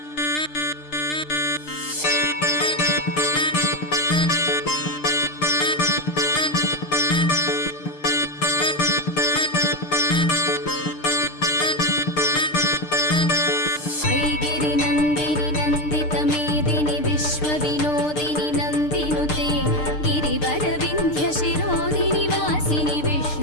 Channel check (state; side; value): late; right; 6.7 ms